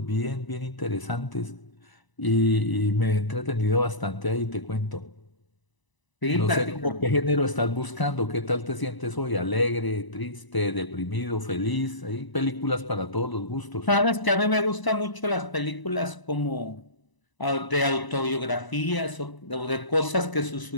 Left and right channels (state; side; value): late; right; 1.0 ms